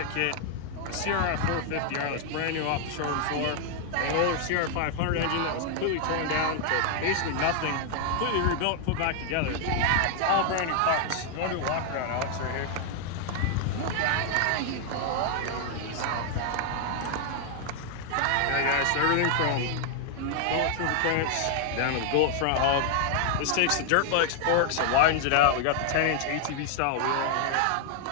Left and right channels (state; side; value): different; both; correlation 0.00